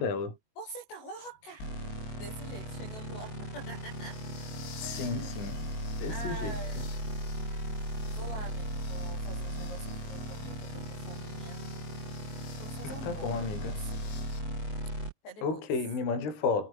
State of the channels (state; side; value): late; right; 19 ms